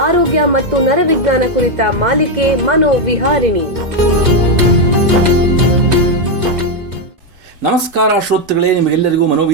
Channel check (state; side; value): late; left; 2.0 ms